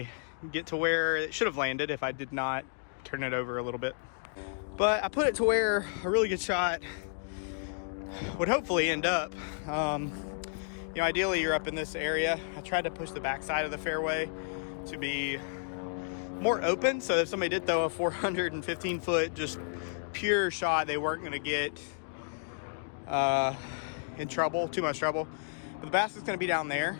get to where it should have landed if I did not turn it over a little bit. But I put it to where a really good shot would hopefully end up. Ideally you're up in this area. I tried to push the backside of the fairway to be more open, so if somebody did throw a 415-foot just pure shot, they weren't going to get in trouble, too much trouble. But the basket's going to be down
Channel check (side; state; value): right; silent; digital silence